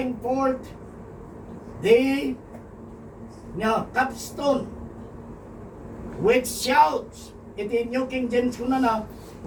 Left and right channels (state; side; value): identical; both; correlation 1.00